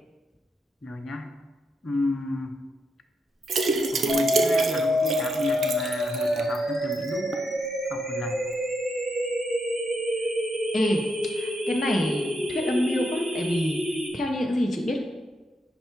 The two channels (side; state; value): both; normal; correlation 0.81